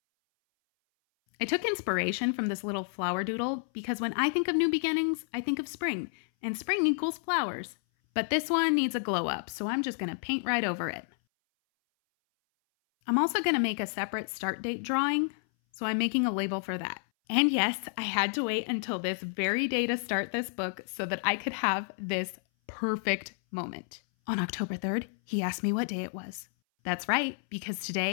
I took inspiration from this little flower doodle because when I think of new beginnings, I think of spring, and spring equals flowers. But this one needs a glow up, so I'm just going to paint right over it. I'm also going to make a separate start date drawing, so I'm making a label for that. And yes, I had to wait until this very day to start this book so that I could have this perfect moment. On October 3rd, he asked me what day it was. That's right, because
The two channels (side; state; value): right; silent; 58 dB below the other